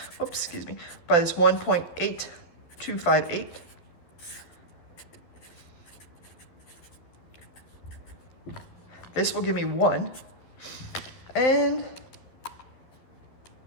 by this 1.8258. This will give me 1. And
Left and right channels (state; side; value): late; right; 12 ms